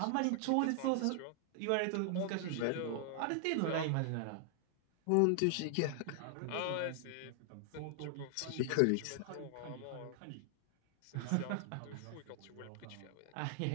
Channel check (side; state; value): both; different; correlation 0.00